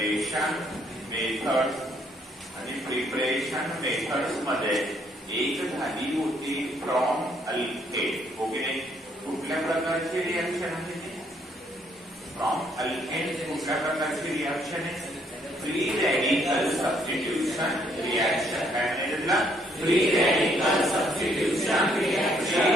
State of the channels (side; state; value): both; normal; correlation 0.69